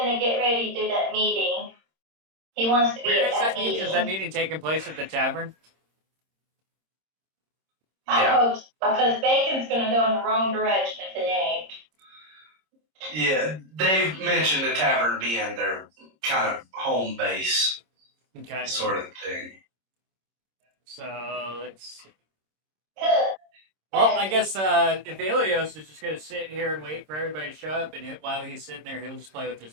get ready to do that meeting. He wants to be Where at is that meeting? meeting. Is that meeting taking place at the tavern? I Yeah. hope so, because Bacon's gonna go in the wrong direction if it ain't. Yeah, they've mentioned the tavern being their kind of home base Okay. sort of thing. So, let's see. Good. Well, I guess Ivellios is just going to sit here and wait for everybody to show up, and while he's sitting there, he'll just play with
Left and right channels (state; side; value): late; left; 26 ms